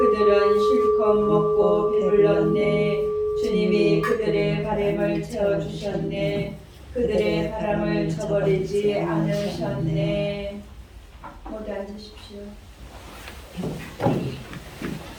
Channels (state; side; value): identical; both; correlation 1.00